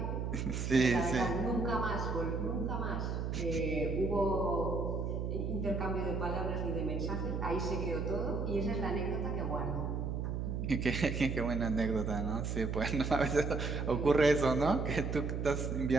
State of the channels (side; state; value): right; noise; hum, 2 dB below the sound